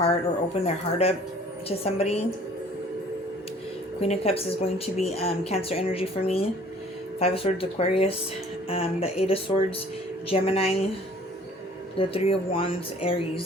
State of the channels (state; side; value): normal; both; correlation 0.53